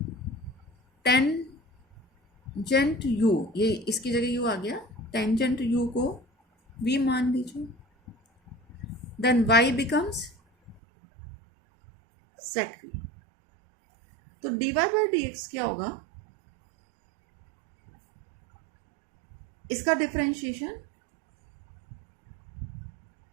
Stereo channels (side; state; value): left; drops out; at 10.8 s